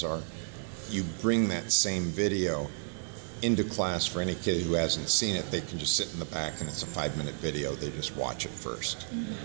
are you bring that same video into class. For any kid who hasn't seen it, they can just sit in the back, and it's a 5-minute video. They just watch it first,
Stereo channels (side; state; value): left; silent; digital silence